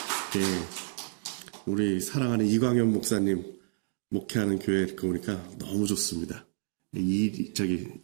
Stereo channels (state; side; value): silent; left; digital silence